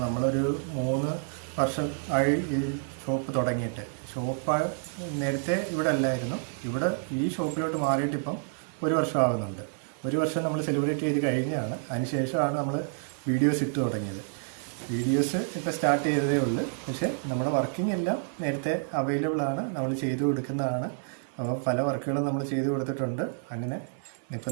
നമ്മളൊരു 3 വർഷം ആയി ഈ ഷോപ്പ് തുടങ്ങിയിട്ട്. ഷോപ്പ് നേരത്തെ ഇവിടെ അല്ലായിരുന്നു. ഇവിടെ ഈ ഷോപ്പിലോട്ട് മാറിയിട്ട് ഇപ്പം 1 വർഷം ആകുന്നുണ്ട്. 1 വർഷം നമ്മൾ സെലിബ്രേറ്റ് ചെയ്ത് കഴിഞ്ഞാണ്. അതിനുശേഷമാണ് നമ്മൾ വീഡിയോസ് ഇട്ട് തുടങ്ങിയത്. വീഡിയോസ് ഇപ്പോൾ സ്റ്റാർട്ട് ചെയ്തതേ ഉള്ളൂ. പക്ഷേ നമ്മുടെ വർക്കിംഗ് എല്ലാം നേരത്തെ അവൈലബിൾ ആണ്, നമ്മൾ ചെയ്തു കൊടുക്കുന്നതാണ്. അപ്പോൾ പല വർക്കുകളും നമ്മൾ ചെയ്തു കൊടുത്തിട്ടുണ്ട്. അങ്ങനെ ഇപ്പോൾ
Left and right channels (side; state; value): left; silent; digital silence